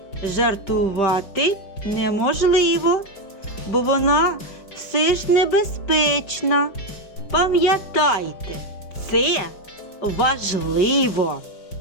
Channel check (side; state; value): right; late; 5.1 ms